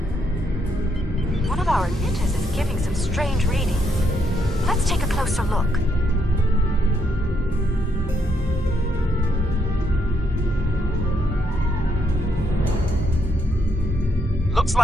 One of our emitters is giving some strange readings. Let's take a closer look. Looks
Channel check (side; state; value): both; normal; correlation 0.76